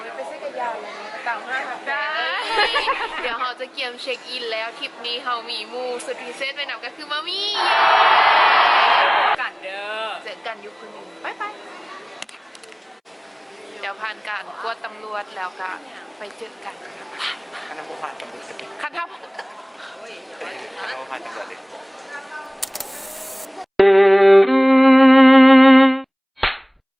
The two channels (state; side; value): identical; both; correlation 1.00